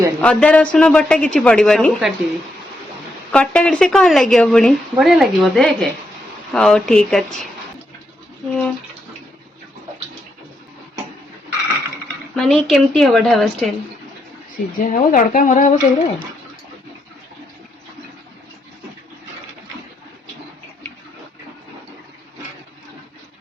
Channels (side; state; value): both; normal; correlation 0.80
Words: अदा रसुन बटा किछि पड़िबानी सब काटिबी कटा कट से कौन लगे पुणी बढ़िया लागिबो देख हां ठीक अछि माने केमती हबो ढाबा स्टाइल सिझा हबो तड़का मरा हबो सबरे